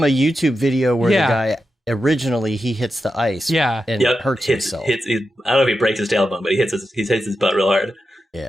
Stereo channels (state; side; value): normal; both; correlation 0.89